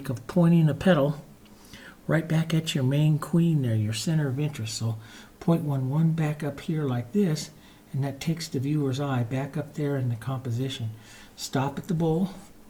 of pointing a petal right back at your main queen there, your center of interest. So point one back up here like this, and that takes the viewer's eye back up there in the composition. Stop at the bowl,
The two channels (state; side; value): identical; both; correlation 1.00